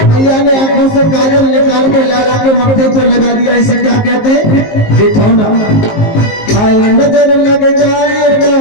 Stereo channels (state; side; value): late; right; 19 ms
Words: मैया ने आंखों से काजल निकाल के लाला के मत्थे पर लगा दिया। इसे क्या कहते हैं? देखो ना, हाय नजर लग जाएगा,